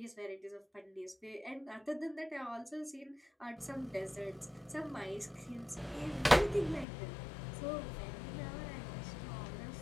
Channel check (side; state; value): right; drops out; at 6.9 s